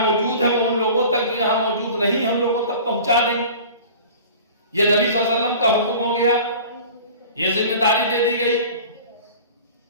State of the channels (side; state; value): both; inverted; correlation -0.42